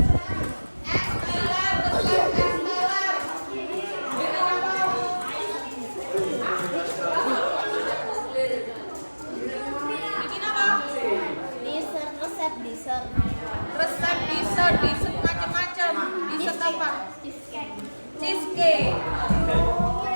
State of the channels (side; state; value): both; inverted; correlation -1.00